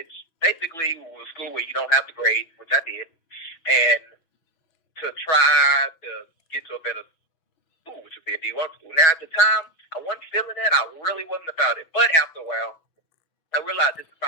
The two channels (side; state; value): right; late; 6.1 ms